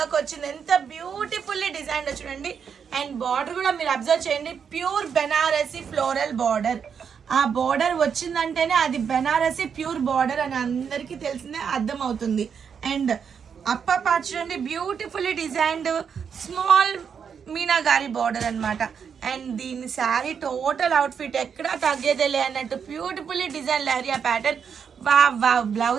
వచ్చింది. ఎంత బ్యూటిఫుల్లీ డిజైన్ చూడండి. అండ్ బార్డర్ కూడా మీరు అబ్జర్వ్ చేయండి, ప్యూర్ బెనారసీ ఫ్లోరల్ బార్డర్. ఆ బార్డర్ వచ్చిందంటేనే అది బెనారసీ ప్యూర్ బార్డర్ అని అందరికీ తెలిసిందే, అర్థమవుతుంది. అండ్ అప్పర్ పార్ట్ చూడండి, బ్యూటిఫుల్లీ డిజైన్డ్ స్మాల్ మీనాగారి బార్డర్ అనమాట. అండ్ దీని శారీ టోటల్ అవుట్ఫిట్ ఎక్కడా తగ్గేదేలే అన్నట్టు బ్యూటిఫుల్లీ డిజైన్ లహరియా ప్యాటర్న్. వా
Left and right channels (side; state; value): left; quieter; 7.0 dB